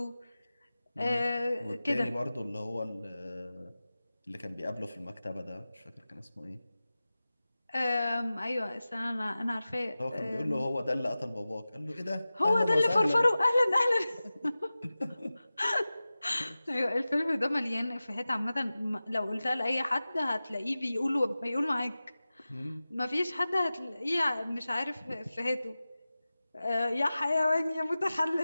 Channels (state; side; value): inverted; both; correlation -0.96